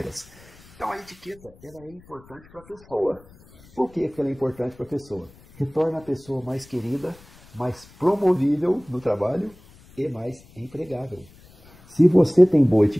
Então a etiqueta ela é importante para a pessoa. Por que ela é importante para a pessoa? Que torna a pessoa mais querida, mais promovível no trabalho e mais empregável. Se você tem boa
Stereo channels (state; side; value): noise; left; rumble, 25 dB below the sound